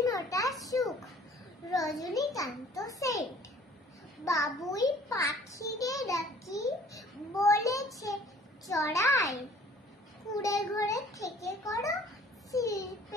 ফোঁটা সুখ, রজনীকান্ত সেন্ট। বাবুই পাখিরে ডাকি, বলেছে চড়াই, কুঁড়ে ঘরে থেকে করো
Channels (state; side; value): normal; both; correlation 0.53